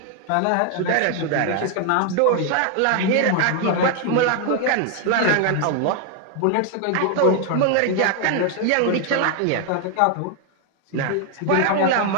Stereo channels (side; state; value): both; different; correlation 0.00